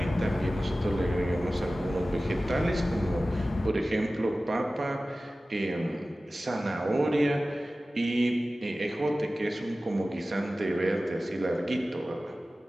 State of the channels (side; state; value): both; normal; correlation 0.96